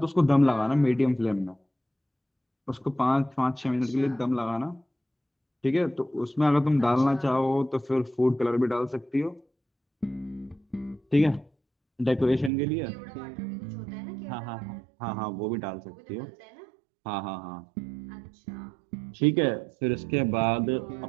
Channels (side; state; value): left; drops out; at 12.5 s